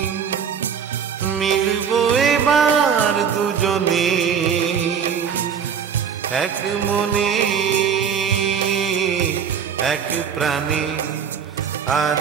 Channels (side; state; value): left; quieter; 7.3 dB